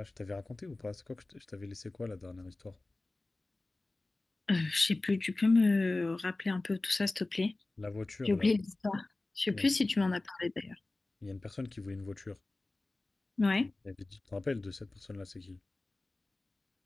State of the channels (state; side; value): quieter; right; 3.0 dB